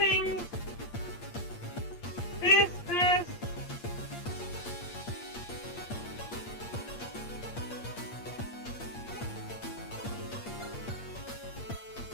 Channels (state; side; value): late; right; 8.6 ms